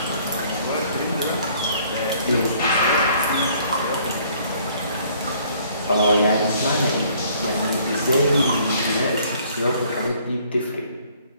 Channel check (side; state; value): both; inverted; correlation -0.60